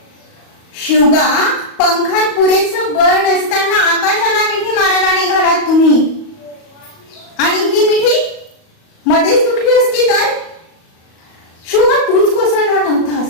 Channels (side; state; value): right; late; 38 ms